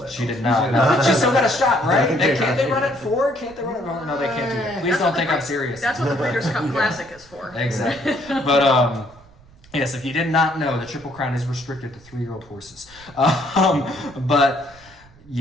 that. She did not. No. She still got a shot, right? Can't they run at 4? Can't they run at 4? No, they can't do that. Please don't think I'm serious. That's what the Breeders' Cup Classic is for. Exactly. But, yes, if you did not know, the Triple Crown is restricted to 3-year-old horses. But...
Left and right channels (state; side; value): noise; right; rumble, 25 dB below the sound